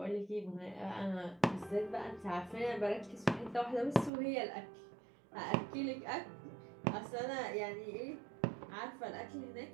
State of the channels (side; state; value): left; drops out; at 4.1 s